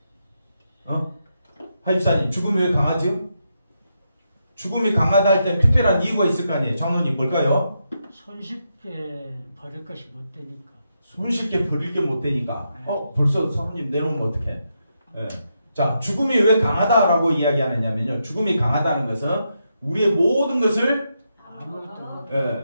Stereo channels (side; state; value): both; inverted; correlation -0.83